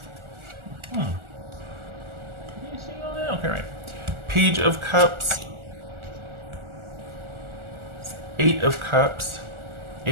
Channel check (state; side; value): late; left; 1.4 ms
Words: Can you see all that? Okay, right. Page of Cups. Eight of Cups.